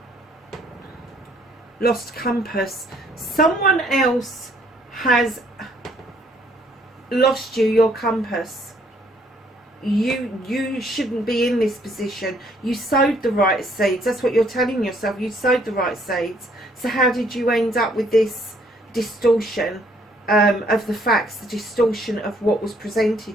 lost compass, someone else has lost you your compass. You shouldn't be in this position. You sowed the right seeds. That's what you're telling yourself. You sowed the right seeds. So how did you end up with this distortion of the facts, the distortion of what was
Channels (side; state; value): both; normal; correlation 0.65